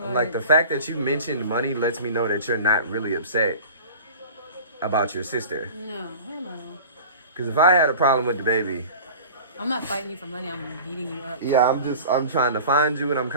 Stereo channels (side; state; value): both; inverted; correlation -0.39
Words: I'm like, the fact that you mentioned money lets me know that you're not really upset about your sister. No, hell no. Because if I had a problem with the baby, I'm not fighting you for money. I'm beating you up. yeah, I'm trying to find you and I'm